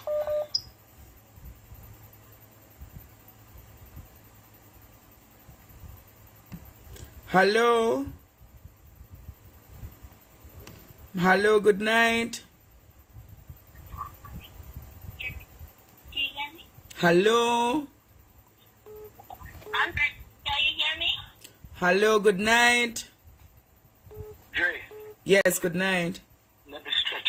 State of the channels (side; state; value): both; identical; correlation 1.00